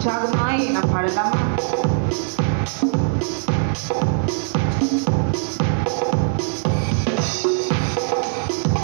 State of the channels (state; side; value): silent; left; digital silence